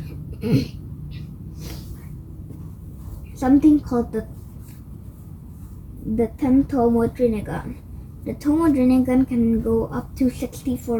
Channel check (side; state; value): both; identical; correlation 1.00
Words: the 10 Tomoe Rinnegan. The Tomoe Rinnegan can go up to